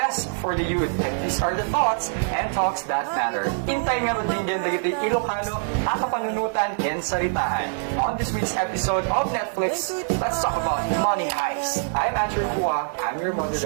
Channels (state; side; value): silent; left; 62 dB below the other